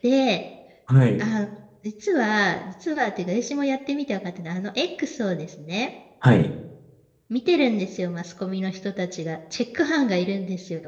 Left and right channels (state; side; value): identical; both; correlation 1.00